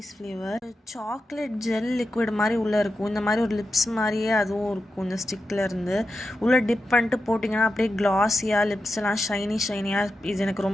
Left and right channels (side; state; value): both; normal; correlation 0.90